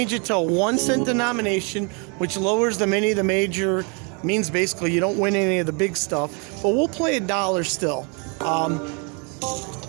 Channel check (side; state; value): left; quieter; 34.6 dB